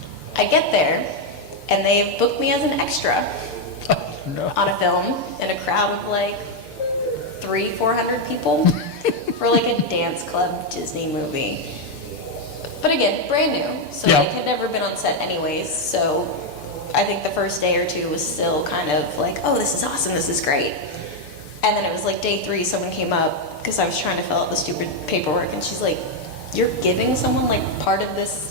I get there, and they've booked me as an extra on a film in a crowd of 300-400 people for a dance club Disney movie. But again, brand new, so had never been on set anyways. So I think the first day or two was still kind of oh, this is awesome, this is great. And then it was day 3, someone came up because I was trying to fill out the stupid paperwork, and she's like, you're giving someone part of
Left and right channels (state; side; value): late; right; 6.8 ms